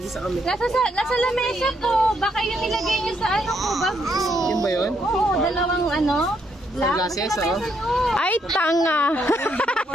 kami. Nasa lamesa po. Baka yung nilagay niyo sa ano ko, bag ko. Yun ba yun? Oo, dalawang ano. Sunglasses, oh. Ay, tanga.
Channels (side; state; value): both; normal; correlation 0.75